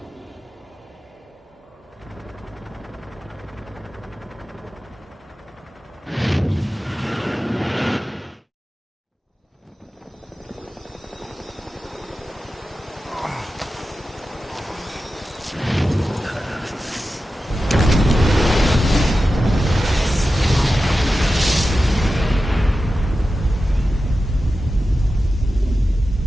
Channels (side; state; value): both; normal; correlation 0.93